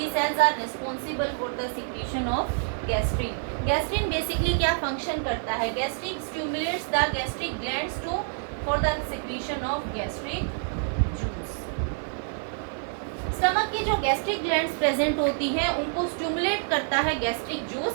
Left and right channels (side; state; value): left; silent; digital silence